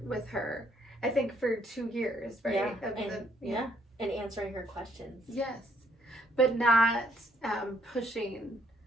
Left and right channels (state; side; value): normal; both; correlation 0.68